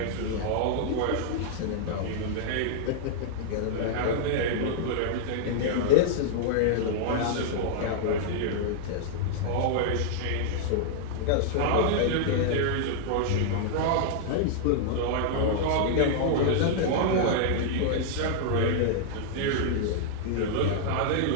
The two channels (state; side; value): different; both; correlation -0.01